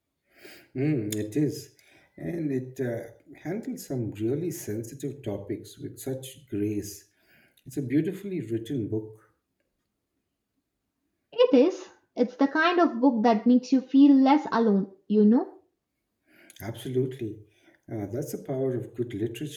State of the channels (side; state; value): both; identical; correlation 1.00